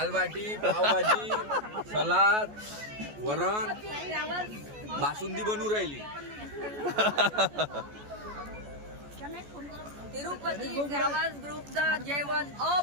बाटी, पावभाजी, सलाद, वरण, बासुंदी बनवून राहिली. तिरुपती ट्रॅव्हल्स ग्रुपचं जेवण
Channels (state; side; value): late; left; 14 ms